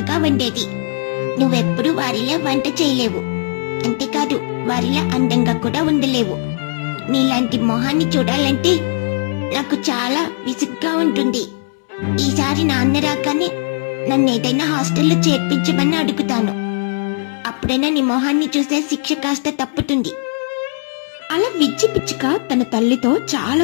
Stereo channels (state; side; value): silent; right; 67 dB below the other